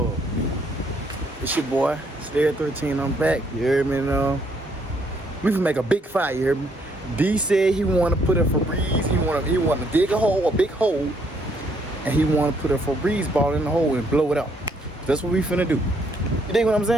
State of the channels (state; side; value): normal; both; correlation 0.69